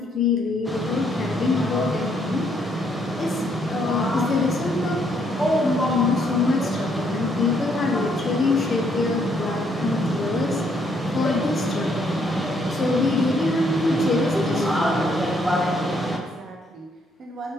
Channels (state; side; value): normal; both; correlation 0.71